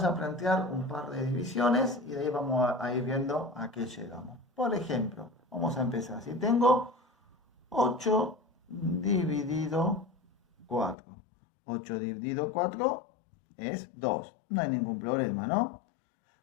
a plantear un par de divisiones y de ahí vamos a ir viendo a qué llegamos. Por ejemplo, vamos a empezar. Si tengo 8 dividido 4. 8 dividido 4 es 2. No hay ningún problema, ¿no?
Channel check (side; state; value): right; drops out; at 11.0 s